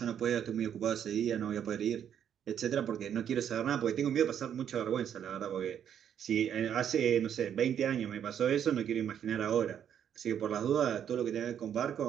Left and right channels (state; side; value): quieter; left; 9.1 dB